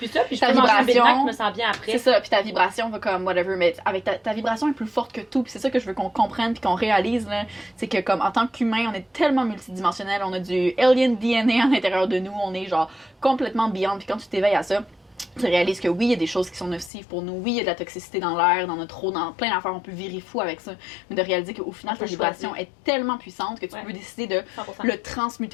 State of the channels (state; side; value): drops out; right; at 16.9 s